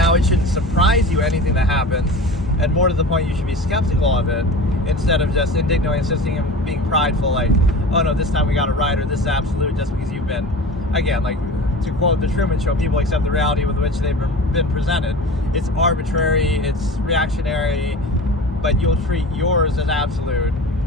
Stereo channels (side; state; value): both; normal; correlation 0.35